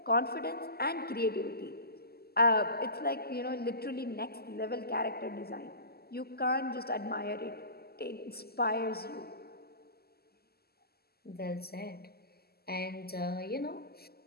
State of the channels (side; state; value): right; late; 0.46 ms